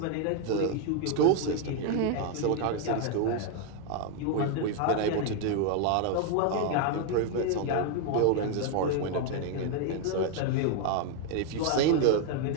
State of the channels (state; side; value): different; both; correlation 0.00